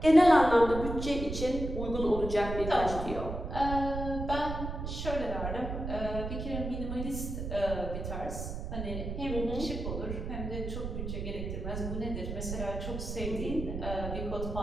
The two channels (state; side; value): noise; right; rumble, 5 dB below the sound